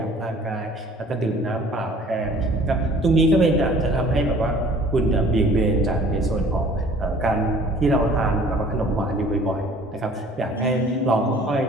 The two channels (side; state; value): both; normal; correlation 0.51